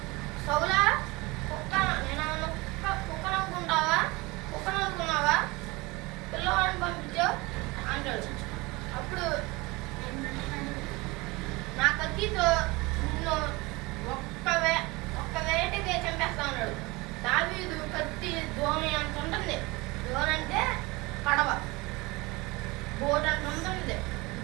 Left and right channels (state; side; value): quieter; left; 23.5 dB